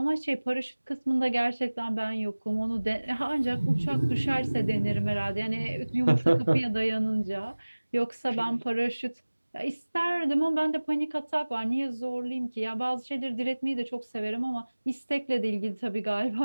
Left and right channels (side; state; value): both; inverted; correlation -1.00